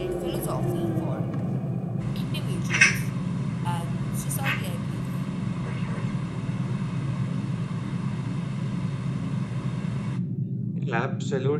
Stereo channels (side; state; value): both; identical; correlation 1.00